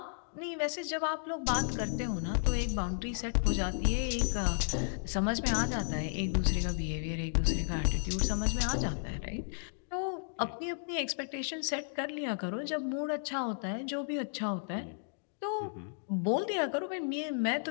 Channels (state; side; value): silent; right; digital silence